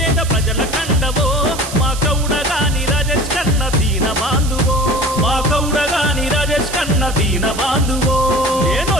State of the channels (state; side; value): noise; right; hiss, 11 dB below the sound